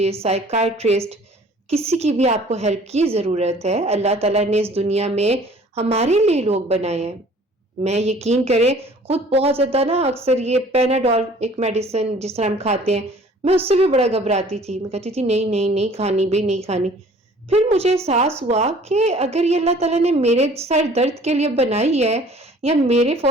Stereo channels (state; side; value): normal; both; correlation 0.52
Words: سائیکائٹرسٹ، کسی کی بھی آپ کو ہیلپ کی ضرورت ہے، اللہ تعالیٰ نے اس دنیا میں ہمارے لیے لوگ بنائے ہیں. میں یقین کریں خود بہت زیادہ نا، اکثر یہ پیناڈول ایک میڈیسن جس طرح ہم کھاتے ہیں، میں اس سے بھی بڑا گھبراتی تھی. میں کہتی تھی نہیں کھانی، بھی نہیں کھانی. پھر مجھے احساس ہوا کہ اگر یہ اللہ تعالیٰ نے میرے سر درد کے لیے بنائی ہے یا میرے